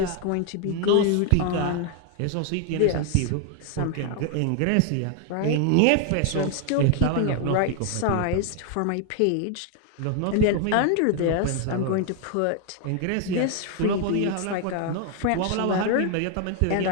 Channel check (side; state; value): both; different; correlation 0.00